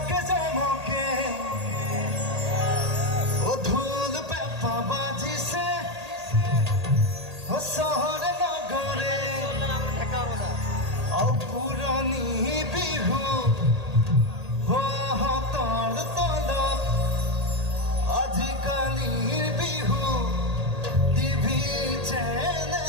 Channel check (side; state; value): left; late; 1.8 ms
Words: ঢোল পেঁপা বাজিছে চহৰে নগৰে, পুৰণি বিহু হাতৰ তলত, আজিকালিৰ বিহু টিভি